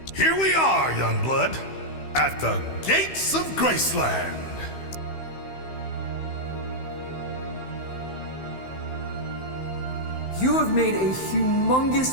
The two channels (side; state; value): right; late; 15 ms